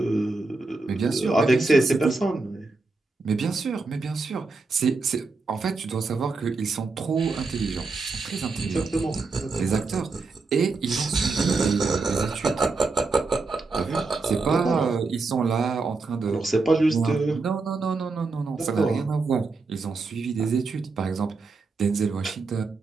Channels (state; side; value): quieter; left; 3.9 dB